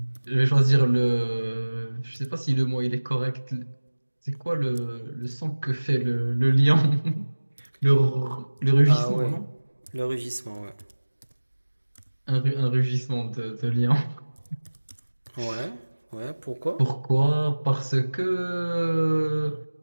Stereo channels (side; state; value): both; inverted; correlation -1.00